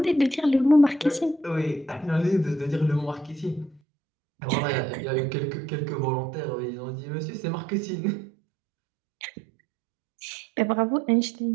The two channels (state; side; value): drops out; left; at 3.8 s